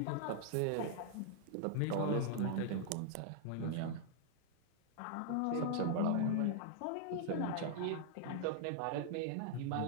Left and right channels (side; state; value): both; different; correlation -0.01